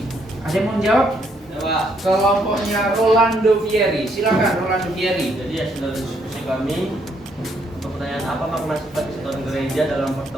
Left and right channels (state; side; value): normal; both; correlation 0.72